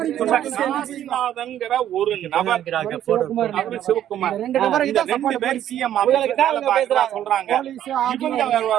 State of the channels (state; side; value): quieter; left; 11.3 dB